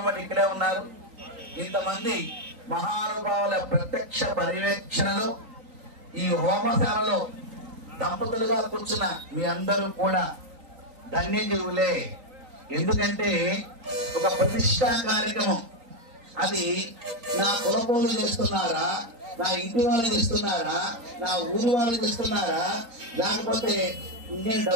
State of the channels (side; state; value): left; late; 3.9 ms